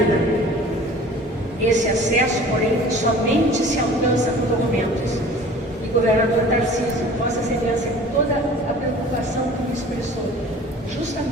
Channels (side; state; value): both; normal; correlation 0.45